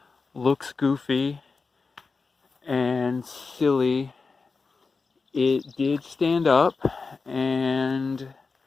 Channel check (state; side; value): quieter; right; 4.4 dB